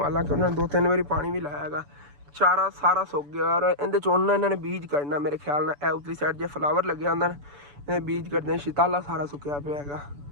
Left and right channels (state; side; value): late; left; 6.9 ms